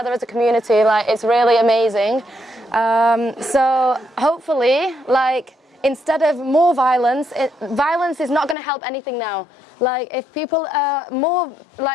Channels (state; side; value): drops out; right; at 8.6 s